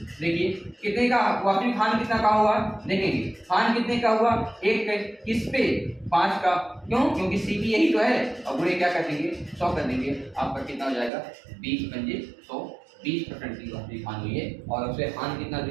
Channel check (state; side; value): drops out; left; at 11.1 s